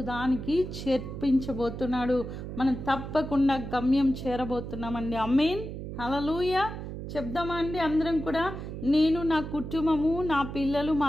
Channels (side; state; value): right; noise; hum, 8 dB below the sound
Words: దానికి చేర్పించబోతున్నాడు. మనం తప్పకుండా గమ్యం చేరబోతున్నామండి. ఆమేన్, హల్లెలూయా. చెప్దామా అండి అందరం కూడా? నేను, నా కుటుంబము, నా పిల్లలు, మా